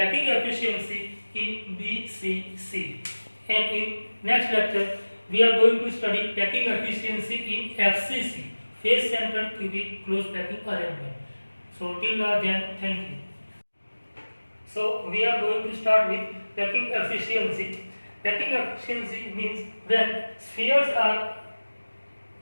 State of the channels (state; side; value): inverted; both; correlation -1.00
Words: efficiency in BCC. And in next lecture we are going to study packing efficiency in FCC, face centered cubic closed packing arrangement. So till now then, thank you. So we are going to start with packing efficiency. Packing efficiency means when spheres are